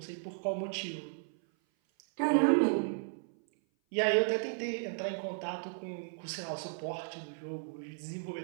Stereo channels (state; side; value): silent; left; 55 dB below the other